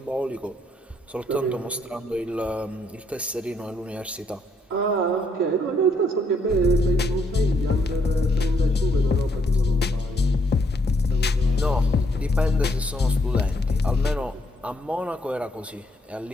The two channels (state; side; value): normal; both; correlation 0.71